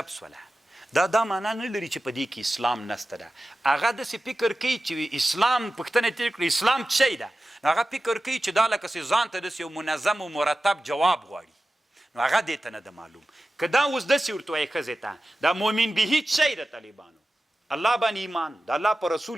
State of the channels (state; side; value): normal; both; correlation 0.94